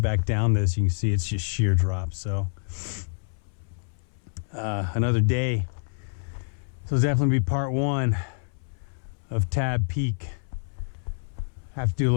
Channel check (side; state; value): right; silent; 60 dB below the other